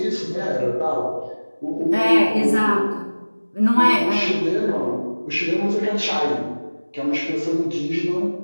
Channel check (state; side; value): inverted; both; correlation -1.00